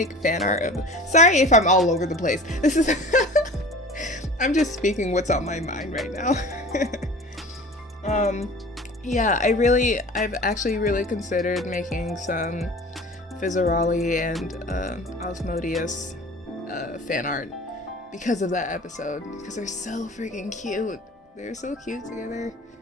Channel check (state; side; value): normal; both; correlation 0.40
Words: fan art of. Sorry if I'm all over the place. This is. I'm just speaking what's on my mind right now. Yeah, I've actually really considered making some Fizzaroli and Osmodius fan art because of that episode, because they're so freaking cute. They're so cute together.